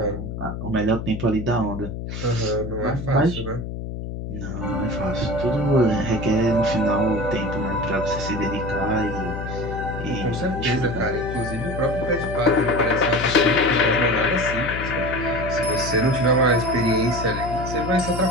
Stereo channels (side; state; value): left; noise; hum, 6 dB below the sound